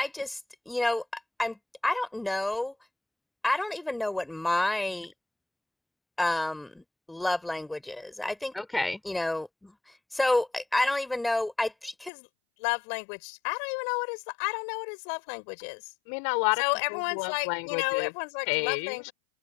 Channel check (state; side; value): drops out; right; at 12.1 s